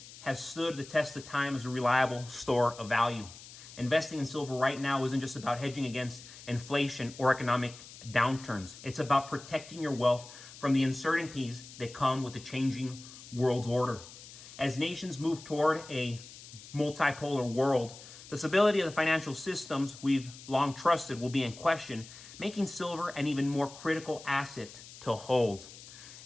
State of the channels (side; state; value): left; noise; hiss, 17 dB below the sound